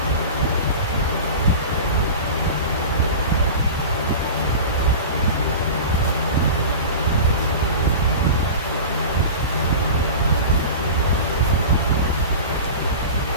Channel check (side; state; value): both; inverted; correlation -0.32